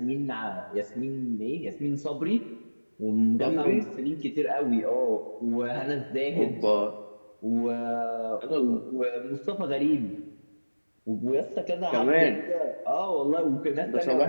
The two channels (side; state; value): both; inverted; correlation -1.00